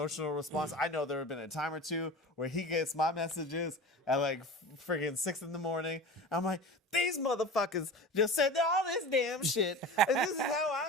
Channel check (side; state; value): both; normal; correlation 0.33